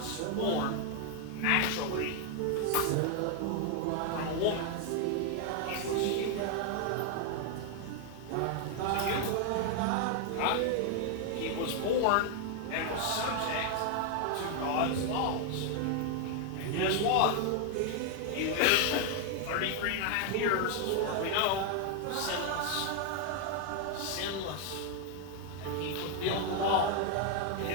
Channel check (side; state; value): both; different; correlation 0.00